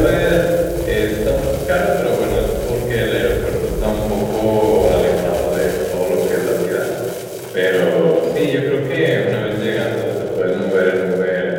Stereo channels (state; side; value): identical; both; correlation 1.00